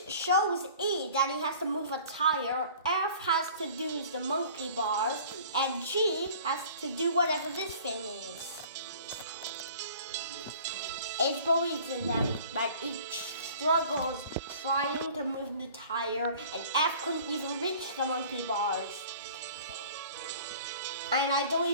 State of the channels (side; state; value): both; inverted; correlation -0.47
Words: shows E that he has to move a tire, F has to do the monkey bars, and G has to do whatever this thing is. H believes in them, but each struggles trying to move the tire, and F couldn't even reach the monkey bars. And I don't